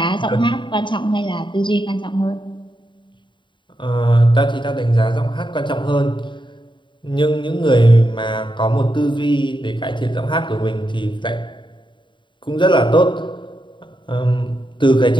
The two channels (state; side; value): late; right; 0.23 ms